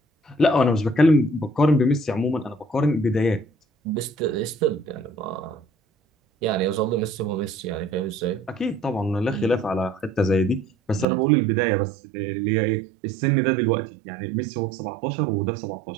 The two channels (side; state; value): left; drops out; at 11.1 s